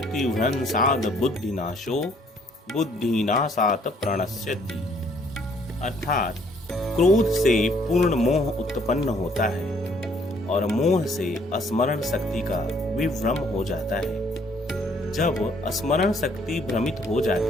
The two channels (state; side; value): normal; both; correlation 0.64